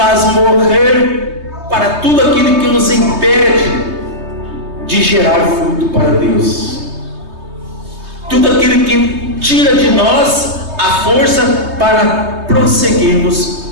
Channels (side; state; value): left; late; 3.2 ms